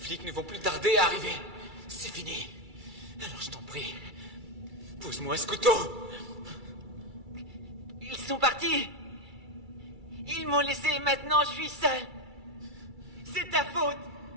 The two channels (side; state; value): left; late; 2.3 ms